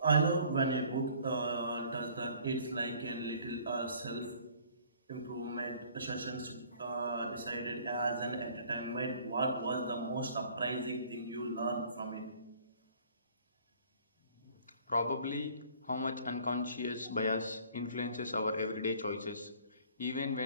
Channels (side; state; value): both; inverted; correlation -0.54